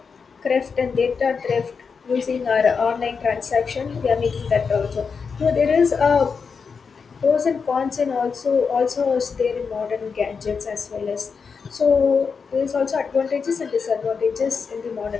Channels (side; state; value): right; quieter; 5.5 dB